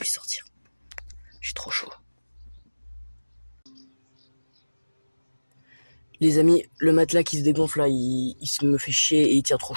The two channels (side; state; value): both; inverted; correlation -1.00